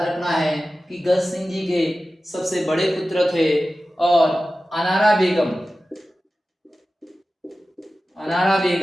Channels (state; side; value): normal; both; correlation 0.95